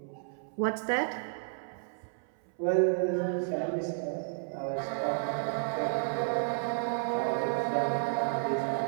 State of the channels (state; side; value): silent; left; 57 dB below the other